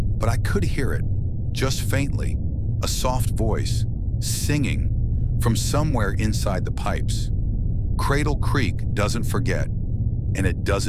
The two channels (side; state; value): both; identical; correlation 1.00